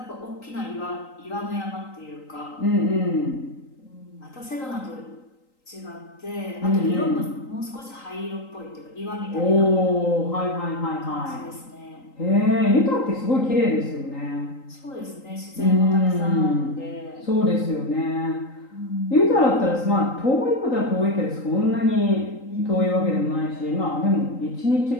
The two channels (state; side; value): late; right; 3.8 ms